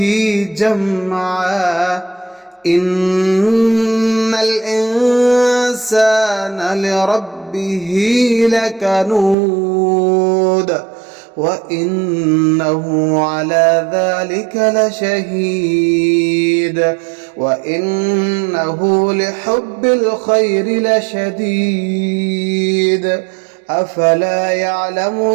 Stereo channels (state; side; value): drops out; left; at 9.3 s